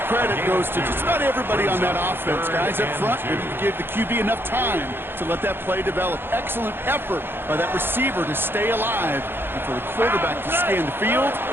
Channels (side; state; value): left; late; 0.10 ms